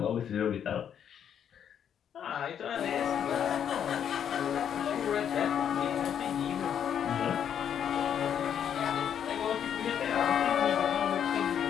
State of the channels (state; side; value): quieter; right; 8.8 dB